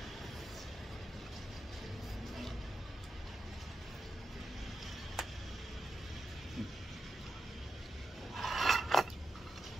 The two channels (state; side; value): normal; both; correlation 0.88